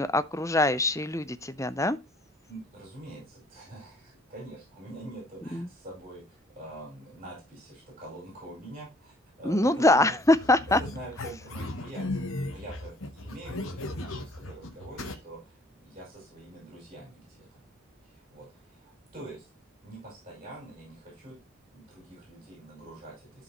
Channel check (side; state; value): both; normal; correlation 0.58